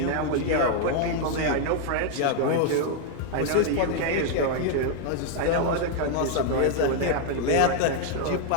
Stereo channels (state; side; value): different; both; correlation 0.00